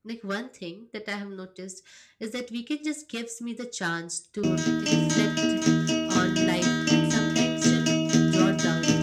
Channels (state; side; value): identical; both; correlation 1.00